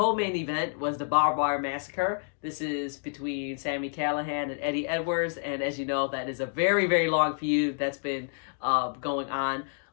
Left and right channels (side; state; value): right; silent; 59 dB below the other